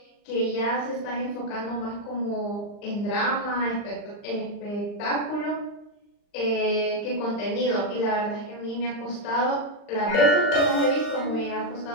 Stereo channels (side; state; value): right; late; 39 ms